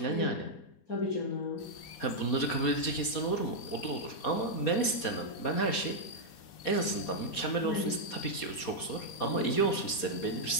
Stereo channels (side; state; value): right; late; 4.2 ms